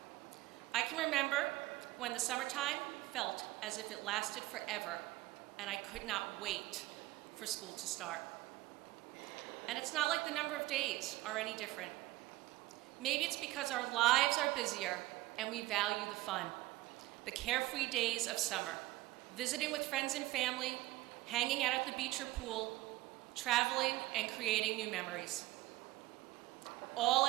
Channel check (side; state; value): left; quieter; 18.2 dB